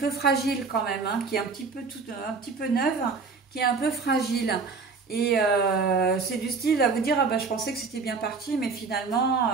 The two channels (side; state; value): left; quieter; 4.6 dB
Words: fragile quand même, hein, qui est un petit peu neuve, qui est un peu fragile. Et c'est du style à vous dire, ah ben, je pensais que c'était bien parti, mais finalement,